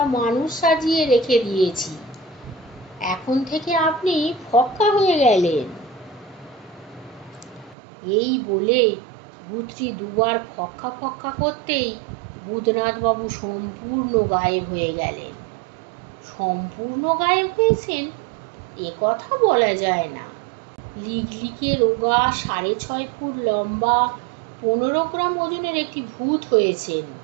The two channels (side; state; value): left; drops out; at 7.8 s